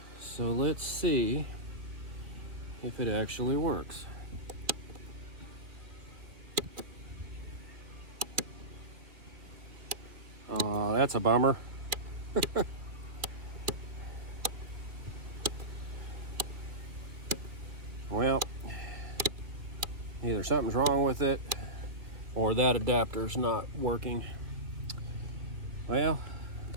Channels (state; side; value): late; left; 2.8 ms